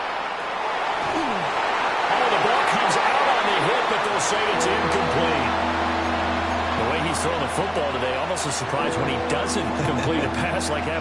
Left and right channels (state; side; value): identical; both; correlation 1.00